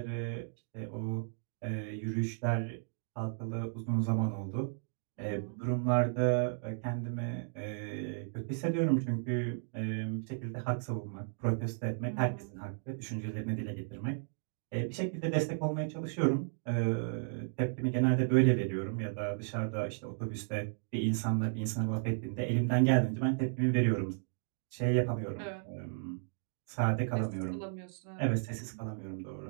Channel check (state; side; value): silent; left; digital silence